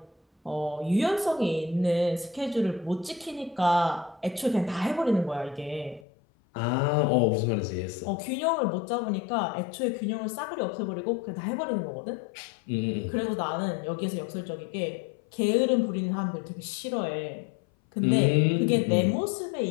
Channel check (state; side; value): drops out; right; at 6.1 s